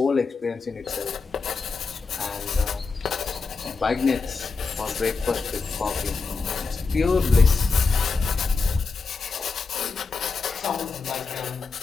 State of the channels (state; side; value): quieter; right; 4.4 dB